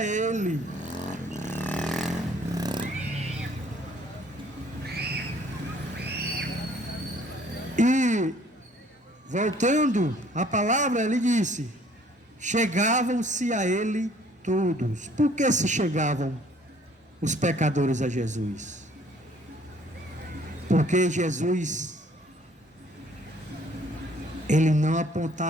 ele. E voltando à palavra, ele disse: chegavam-se a ele todos. Por que se chegavam os pecadores a Jesus? Porque Jesus, ele não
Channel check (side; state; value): both; normal; correlation 0.58